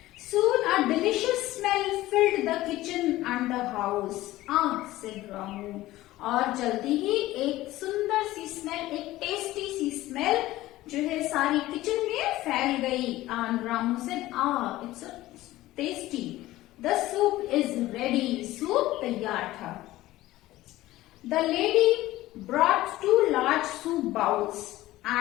Soon a delicious smell filled the kitchen and the house. said Ramu. और जल्दी ही एक सुंदर सी स्मेल, एक टेस्टी सी स्मेल जो है सारी किचन में फैल गई. And Ramu said, it's a tasty. The soup is ready. Soup तैयार था. The lady brought 2 large soup bowls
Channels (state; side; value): quieter; right; 16.6 dB